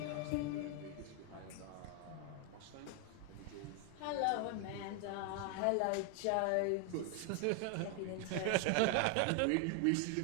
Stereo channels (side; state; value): both; different; correlation 0.00